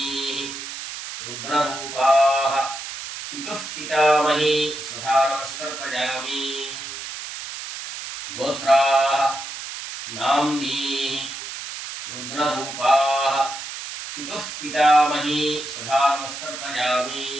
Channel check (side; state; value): right; noise; hiss, 9 dB below the sound